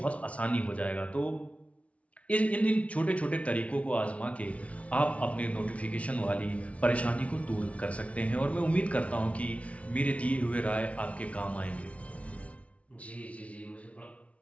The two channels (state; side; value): late; right; 0.064 ms